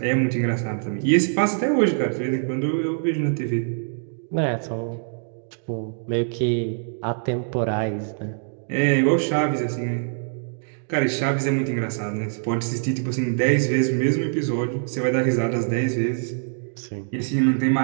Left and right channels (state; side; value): silent; left; digital silence